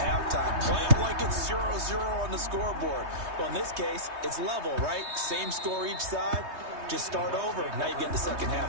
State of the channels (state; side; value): late; left; 3.2 ms